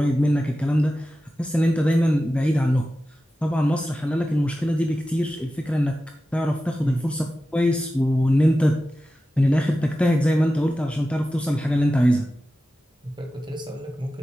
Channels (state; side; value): normal; both; correlation 0.94